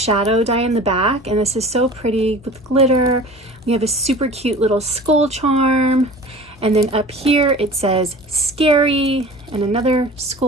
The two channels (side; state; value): both; normal; correlation 0.40